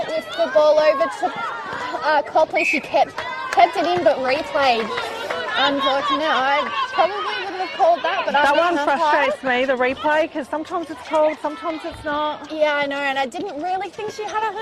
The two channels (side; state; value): both; identical; correlation 1.00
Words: the ball over to Copley. She kept it in but replayed. Unfortunate. I probably wouldn't have called that, but that one frustrates me, the replay, because sometimes it's called, sometimes it's not. Yeah, I know, and I didn't really think she had